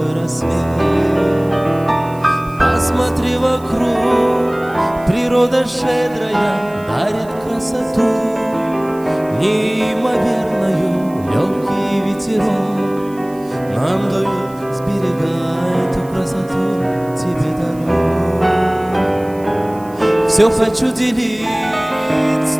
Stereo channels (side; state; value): right; noise; hiss, 25 dB below the sound